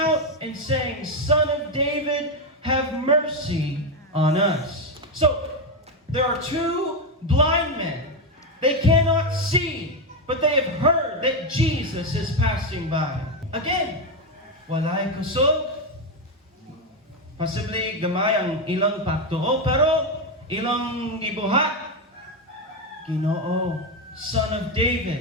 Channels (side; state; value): both; normal; correlation 0.08